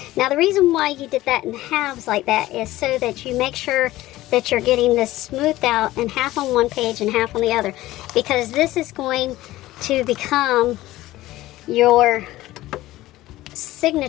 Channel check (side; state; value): right; quieter; 16.5 dB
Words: Now, the reason why you did that in halves like that is so that you make sure that you're getting this smoothed out and half on one page and half on the other. Because this is going to become your